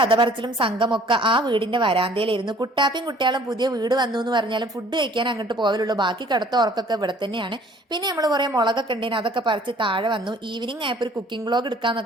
പറച്ചിലും സംഘമൊക്കെ ആ വീടിന്റെ വരാന്തയിലായിരുന്നു. കുട്ടാപ്പിയും കുട്ടികളും പുതിയ വീട് വന്നു എന്ന് പറഞ്ഞാലും ഫുഡ് കഴിക്കാൻ അങ്ങോട്ട് പോകലുള്ളൂ. ബാക്കി കിടത്ത ഉറക്കൊക്കെ ഇവിടെ തന്നെയാണ്. പിന്നെ നമ്മൾ കുറെ മുളകൊക്കെ ഉണ്ടേന്, അതൊക്കെ പറിച്ച് താഴെ വന്നു. ഈവനിങ് ആയപ്പോൾ ഒരു കുക്കിംഗ് വ്ളോഗ്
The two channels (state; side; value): normal; both; correlation 0.55